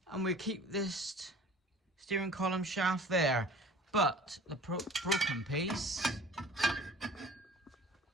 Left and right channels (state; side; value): normal; both; correlation 0.45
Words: And we'll keep this steering column shaft there. But the broken piece,